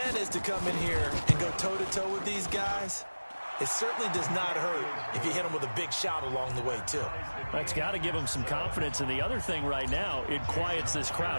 is to come in here and go toe-to-toe with these guys, it certainly does not hurt if you hit them with a big shout along the way, too. That's got to give them some confidence. And the other thing right now, it quiets this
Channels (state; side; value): inverted; both; correlation -1.00